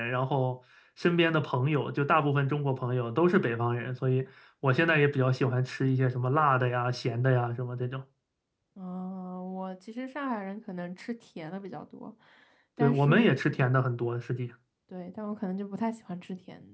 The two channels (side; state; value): both; identical; correlation 1.00